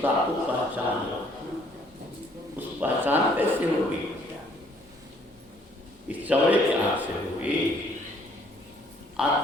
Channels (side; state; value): both; normal; correlation 0.63